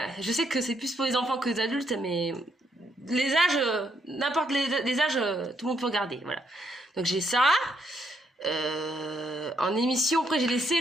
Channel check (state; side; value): normal; both; correlation 0.75